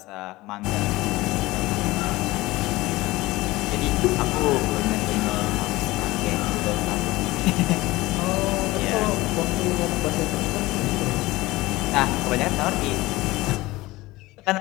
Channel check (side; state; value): right; quieter; 19.6 dB